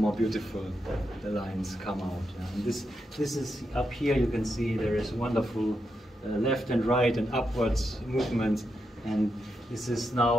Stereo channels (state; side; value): normal; both; correlation 0.85